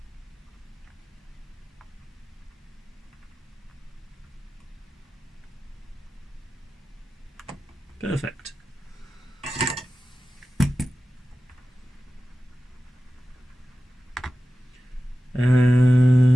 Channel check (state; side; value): normal; both; correlation 0.94